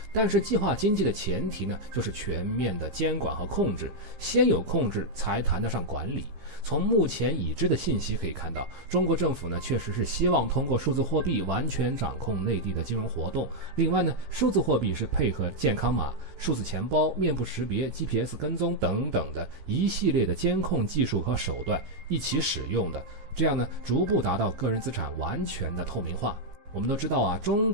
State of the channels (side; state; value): left; late; 15 ms